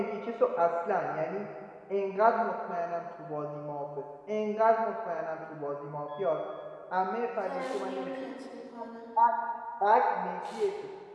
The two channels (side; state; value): both; identical; correlation 1.00